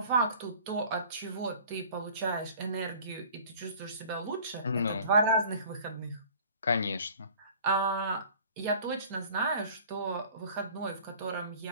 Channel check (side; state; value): both; inverted; correlation -0.48